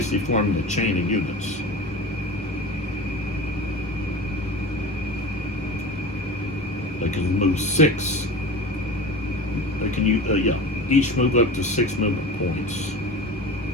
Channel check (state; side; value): normal; both; correlation 0.33